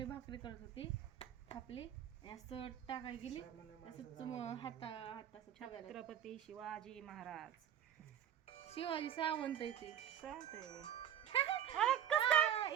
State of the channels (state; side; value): quieter; left; 10.0 dB